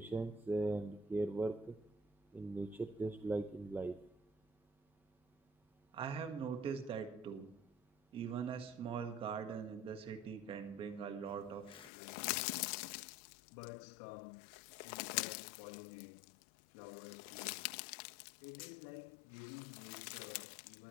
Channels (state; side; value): drops out; right; at 11.9 s